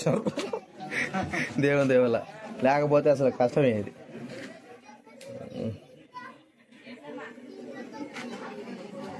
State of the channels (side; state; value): both; identical; correlation 1.00